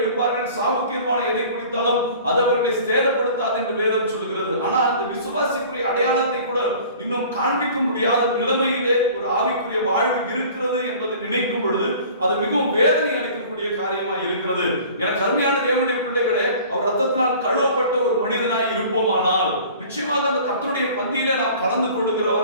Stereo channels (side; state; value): both; inverted; correlation -0.46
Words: சாவுக்கீர்வான எதை குடித்தாலும் அது அவர்களை சேதப்படுத்தாது என்று வேதம் சொல்கிறது. ஆனால் அந்த விசுவாசிக்குரிய அடையாளத்தை கூட இன்னும் காண்பிக்க முடியாத நிலைமையிலே ஒரு ஆவிக்குரிய வாழ்வு இருக்கிறது என்பதை நினைக்கும் பொழுது அது மிகவும் வேதனை அளிக்கக்கூடிய காரியமாய் இருக்கிறது. எனக்கு அருமையான தேவனுடைய பிள்ளைகளே, அவர் ரத்தத்தினால் கழுவப்பட்ட ஒரு மனிதனாய் இருப்போமானால் நிச்சயமாக அந்த கர்த்தருடைய பந்தியிலே நாம் கலந்து